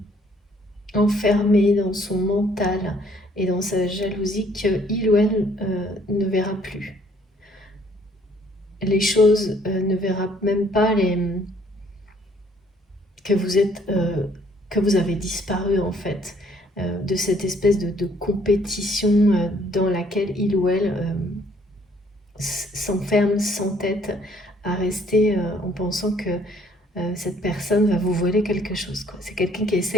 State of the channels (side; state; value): both; normal; correlation 0.62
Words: enfermée dans son mental et dans sa jalousie qu'il ou elle ne verra plus les choses, ne verra même pas que vous avez disparu en fait, de cette espèce de compétition dans laquelle il ou elle s'enferme, s'entête à rester en pensant que cette personne va vous voler quelque chose, quoi. C'est quelqu'un qui